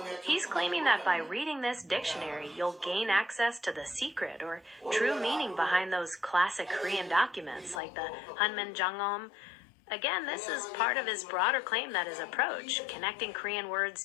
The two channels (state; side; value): drops out; right; at 7.8 s